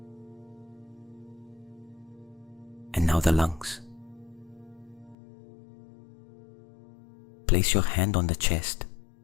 And now the lungs. Place your hand on the chest,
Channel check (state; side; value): drops out; right; at 5.2 s